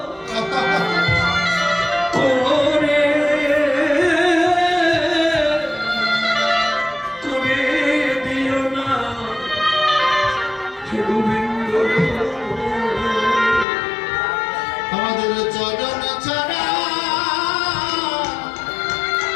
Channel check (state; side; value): drops out; right; at 13.7 s